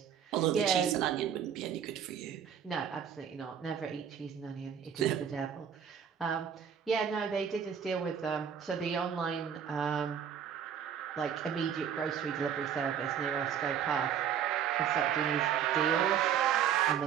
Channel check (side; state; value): left; quieter; 8.4 dB